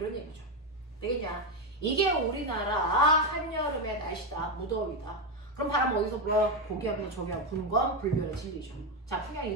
얘기죠. 되겠냐? 이게 우리나라 한여름의 날씨다. 무더위다. 그럼 바람 어디서 불어? 고기압에서 저기압 부는 건 불변의 진리죠. 자, 풍양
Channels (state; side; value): normal; both; correlation 0.09